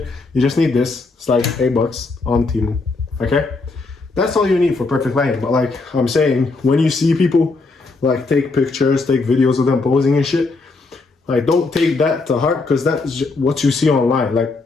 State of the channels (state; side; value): quieter; right; 3.7 dB